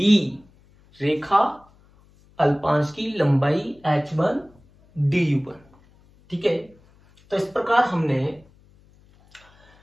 रेखा अल्पांश की लंबाई H1 du1। ठीक है, तो इस प्रकार हमने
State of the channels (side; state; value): left; noise; hum, 30 dB below the sound